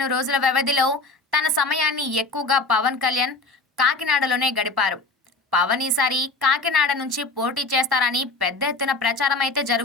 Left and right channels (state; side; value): quieter; right; 3.6 dB